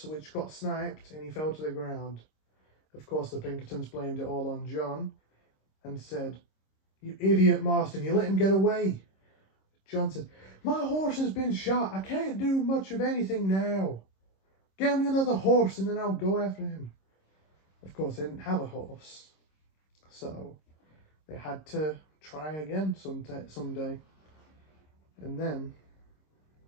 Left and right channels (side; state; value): right; late; 26 ms